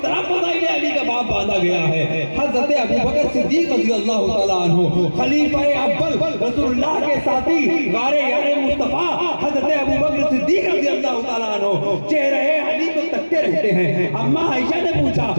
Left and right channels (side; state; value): both; inverted; correlation -1.00